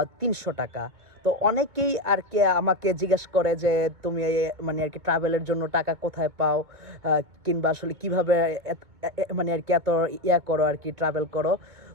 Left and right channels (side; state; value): left; late; 2.1 ms